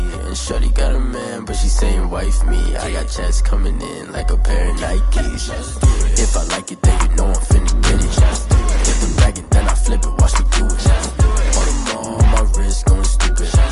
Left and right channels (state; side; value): identical; both; correlation 1.00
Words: And shorty got a man, but she saying wife me. I got checks coming in like a pair of Nikes. If I like it, then you know I'm finna get it. Get the bag and then I flip it, watch me do it. On them all, my wrist going stupid.